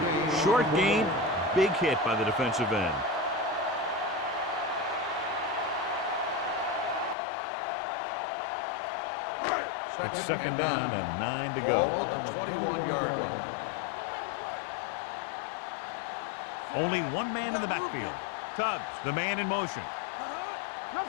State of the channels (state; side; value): drops out; right; at 7.2 s